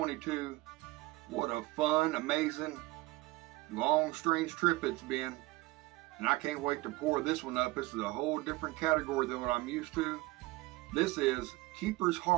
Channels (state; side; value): quieter; left; 20.5 dB